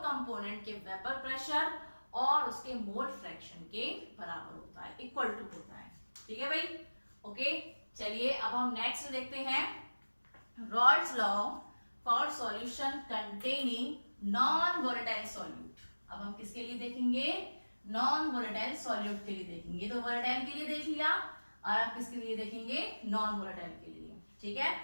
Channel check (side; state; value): both; inverted; correlation -1.00